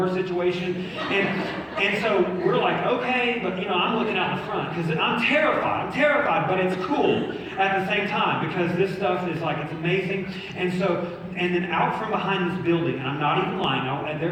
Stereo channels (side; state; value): both; identical; correlation 1.00